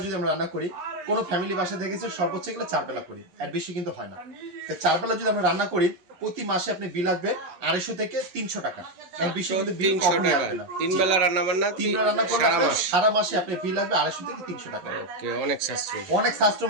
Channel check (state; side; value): late; left; 11 ms